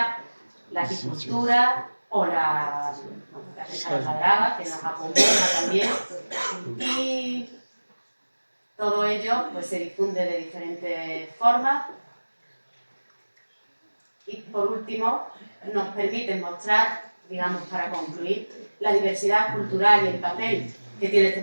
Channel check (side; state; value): both; inverted; correlation -1.00